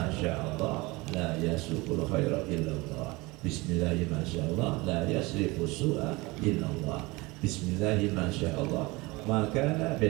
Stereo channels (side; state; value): left; quieter; 23.3 dB